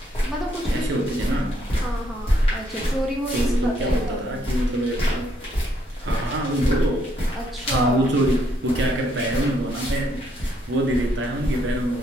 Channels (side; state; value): both; normal; correlation 0.72